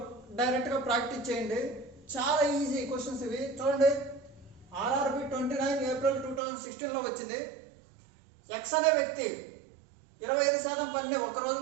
డైరెక్ట్గా ప్రాక్టీస్ చేయండి. చాలా ఈజీ క్వశ్చన్స్ ఇవి. చూడండి, ఆర్ఆర్బి 29 ఏప్రిల్ 2016లో వచ్చింది. ఎక్స్ అనే వ్యక్తి 25% పనిని ఒక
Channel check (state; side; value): drops out; left; at 6.4 s